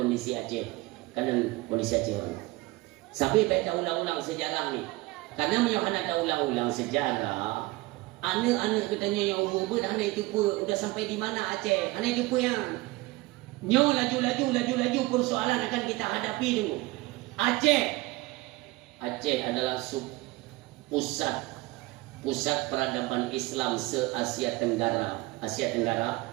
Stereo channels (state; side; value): quieter; left; 20.9 dB